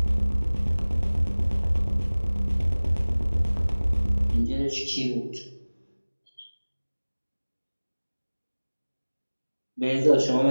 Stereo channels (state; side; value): inverted; both; correlation -1.00